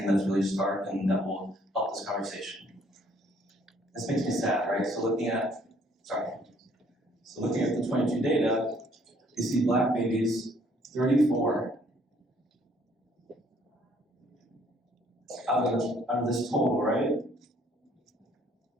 that's really stark and that will help this conversation. This makes me sad, right? So looking at the 22 data, you see Black babies, 34 out of this total, right?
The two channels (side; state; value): both; normal; correlation 0.63